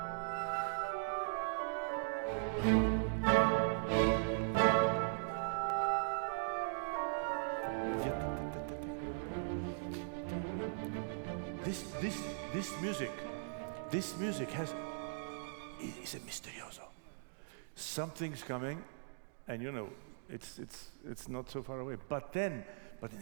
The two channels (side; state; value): left; silent; digital silence